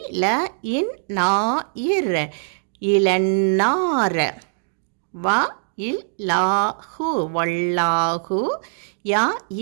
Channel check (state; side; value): silent; left; digital silence